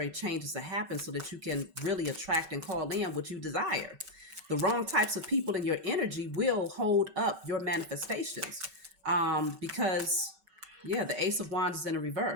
changes to happen so that you can really attract and call in what you desire. The wrong types of people in your energy will hold up your manifestations. Because yeah, the Ace of Wands is in a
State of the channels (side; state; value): left; late; 5.3 ms